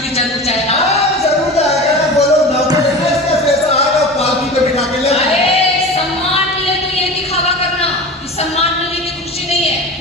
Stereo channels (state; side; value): normal; both; correlation 0.32